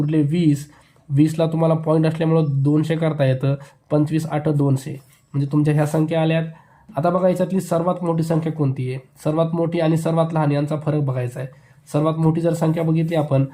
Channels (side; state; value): both; identical; correlation 1.00